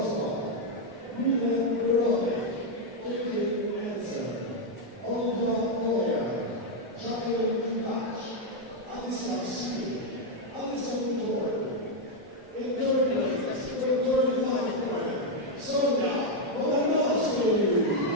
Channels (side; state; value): both; normal; correlation 0.01